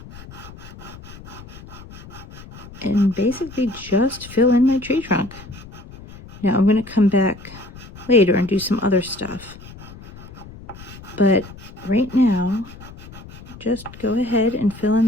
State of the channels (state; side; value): noise; left; rumble, 17 dB below the sound